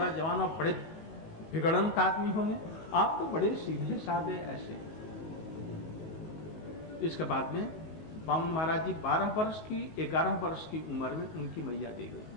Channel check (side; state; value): right; late; 19 ms